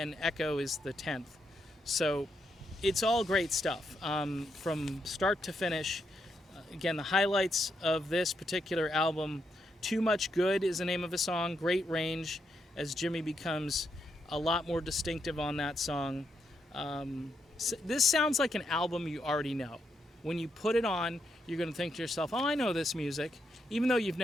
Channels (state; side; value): normal; both; correlation 0.80